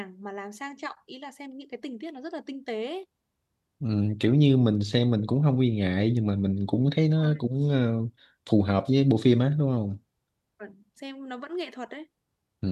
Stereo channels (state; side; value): identical; both; correlation 1.00